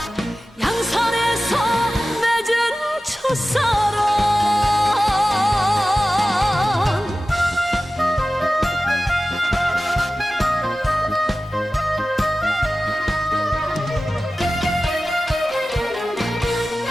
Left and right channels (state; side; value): normal; both; correlation 0.96